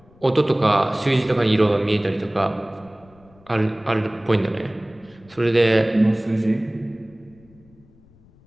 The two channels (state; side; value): noise; left; rumble, 28 dB below the sound